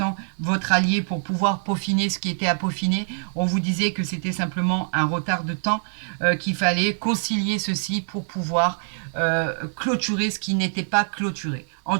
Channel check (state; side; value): silent; left; 62 dB below the other